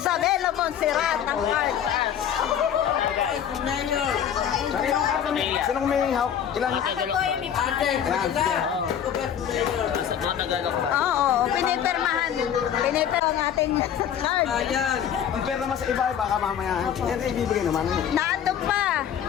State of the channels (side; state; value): right; quieter; 9.2 dB